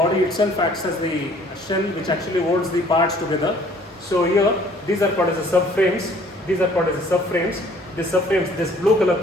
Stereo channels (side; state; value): both; normal; correlation 0.57